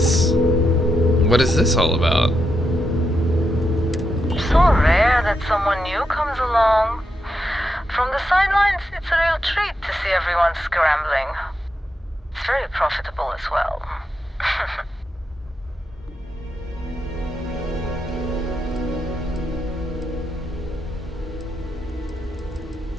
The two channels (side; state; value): both; normal; correlation 0.84